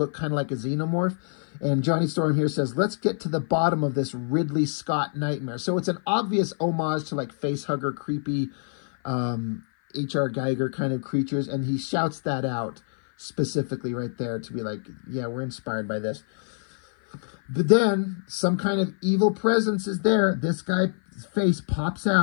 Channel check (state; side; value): silent; right; 56 dB below the other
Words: kind of like a xenomorph. And Johnny Storm here says, let's get to the bottom of this Ridley Scott nightmare. So it's an obvious homage to like facehugger, creepy H.R. Geiger kind of creatures. And he shouts that out specifically right there to be like, yeah, we're inspired by this. But then some kind of evil presence is there. This guy's face pops